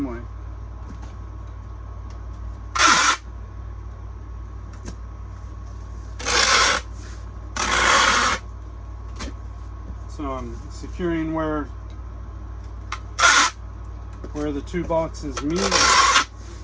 way. So I'm securing where the two boxes meet.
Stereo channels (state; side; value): identical; both; correlation 1.00